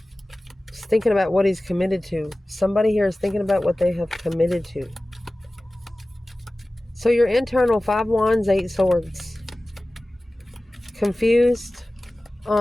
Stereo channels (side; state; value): both; normal; correlation 0.97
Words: Just thinking about what he's committed to. Somebody here is thinking about what they have committed to. So your internal 5 Wands, 8 Swords. Confused